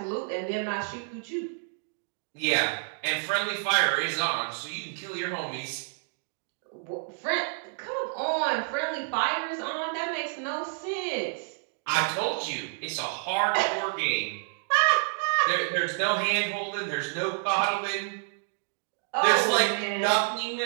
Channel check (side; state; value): left; silent; digital silence